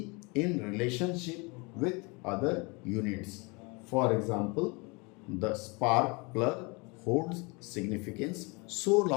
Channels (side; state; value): right; quieter; 28.6 dB